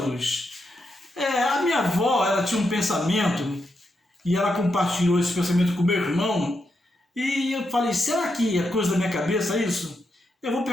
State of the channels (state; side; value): normal; both; correlation 0.83